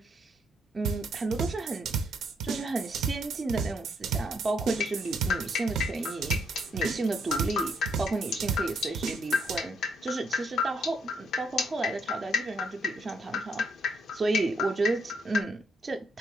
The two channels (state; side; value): normal; both; correlation 0.73